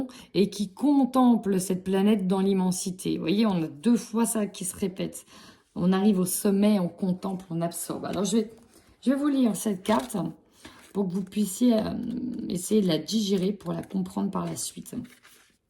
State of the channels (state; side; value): identical; both; correlation 1.00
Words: et qui contemple cette planète dans l'immensité. Vous voyez, on a 2 fois ça qui se répète. On arrive au sommet, on contemple, on absorbe. Alors, je vais vous lire cette carte pour que vous puissiez essayer de la digérer pour la comprendre par la suite.